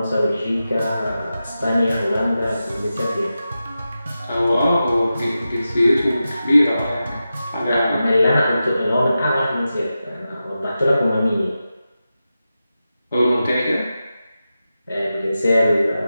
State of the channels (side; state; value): both; inverted; correlation -0.92